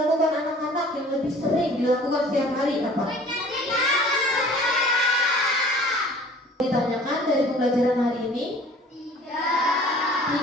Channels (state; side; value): normal; both; correlation 0.49